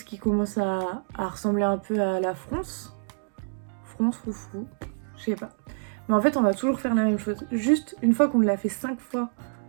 qui commence à ressembler un peu à la fronce. Fronce, foufou, je sais pas. Mais en fait, on va toujours faire la même chose. Juste, une fois qu'on l'a fait 5 fois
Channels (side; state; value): left; silent; 60 dB below the other